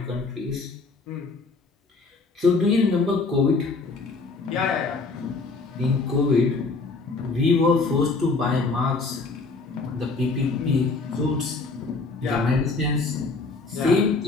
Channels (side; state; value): right; quieter; 3.9 dB